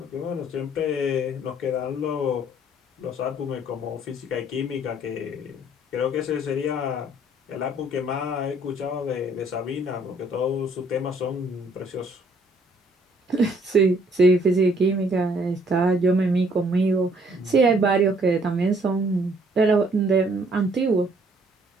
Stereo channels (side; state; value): both; normal; correlation 0.62